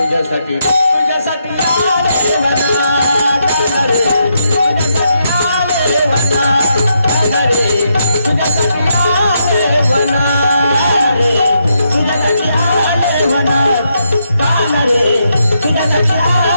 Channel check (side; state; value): both; inverted; correlation -0.79